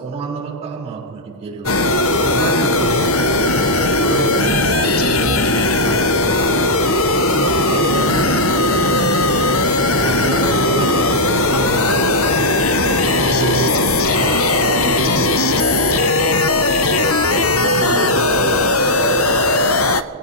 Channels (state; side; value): normal; both; correlation -0.05